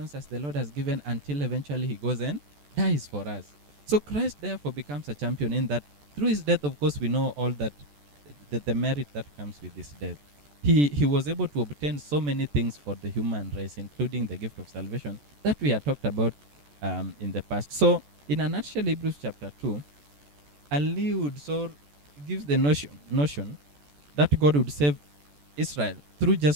as the Lord has given, until eventually he goes and dies for us. So Christ therefore becomes a champion in that through his death, of course, we know all that, the merit that comes with his death. he was able to obtain so many things for the human race, including the gift of salvation that we had talked about in the past. So, in a nutshell, Hebrews chapter 2 alludes or gives the notion that God would save Israel through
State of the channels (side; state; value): left; late; 14 ms